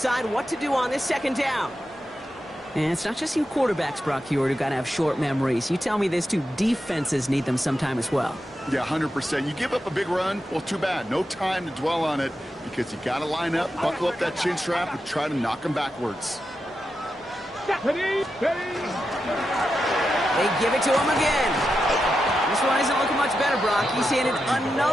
what to do on this 2nd down. And it's not just you quarterbacks, Brock Hewitt, who got to have short memories. You tell me this too, defenses need them sometime as well. Yeah, 100%. You give up a big run, well, too bad. No time to dwell on it because you got to line up, buckle up that chin strap, and try to knock them backwards. Ready, ready. They give it to him again. This one isn't looking much better, Brock. He's handed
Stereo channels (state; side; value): normal; both; correlation 0.88